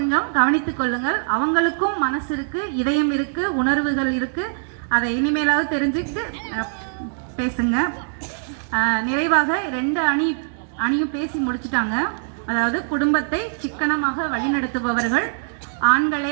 கவனித்துக் கொள்ளுங்கள். அவங்களுக்கும் மனசு இருக்கு, இதயம் இருக்கு, உணர்வுகள் இருக்கு. அதை இனிமேலாவது தெரிஞ்சுக்கிட்டு பேசுங்க. நிறைவாக 2 அணியும் பேசி முடிச்சுட்டாங்க. அதாவது குடும்பத்தை சிக்கனமாக வழிநடத்துபவர்கள்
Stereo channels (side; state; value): left; silent; digital silence